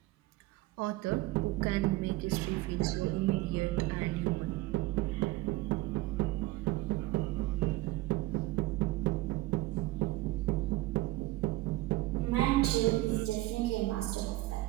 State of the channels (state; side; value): quieter; left; 18.5 dB